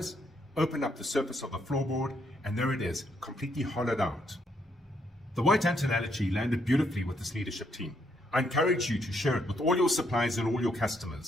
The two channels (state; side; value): normal; both; correlation 0.74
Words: open up the surface of the floorboard, and there it is, completely hollowed out. The white ant analogy landed beautifully with this leadership team. I encourage you to share it with all your suppliers and all your